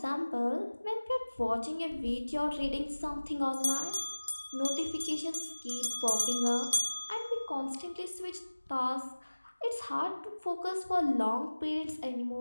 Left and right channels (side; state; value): both; inverted; correlation -1.00